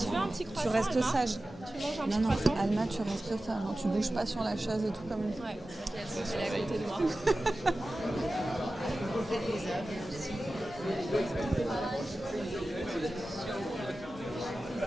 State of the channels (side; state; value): both; normal; correlation 0.95